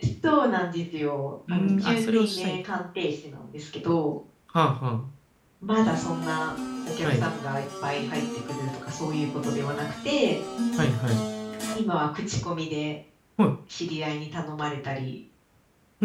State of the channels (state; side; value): identical; both; correlation 1.00